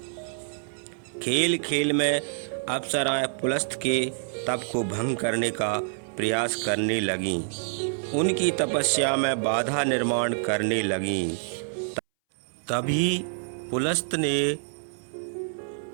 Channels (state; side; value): silent; left; 60 dB below the other